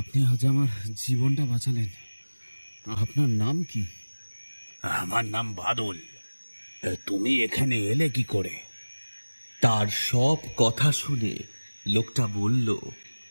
আজ আমার জীবনটা বাঁচালেন। আপনার নাম কি? আমার নাম বাদল। তুমি এখানে এলে কি করে? তার সব কথা শুনে লোকটা বলল,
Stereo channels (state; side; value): inverted; both; correlation -1.00